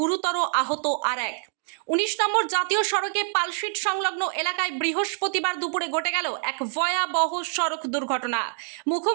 আহত আর এক। ১৯ নম্বর জাতীয় সড়কে পালশিট সংলগ্ন এলাকায় বৃহস্পতিবার দুপুরে ঘটে গেল এক ভয়াবহ সড়ক দুর্ঘটনা।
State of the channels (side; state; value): left; silent; digital silence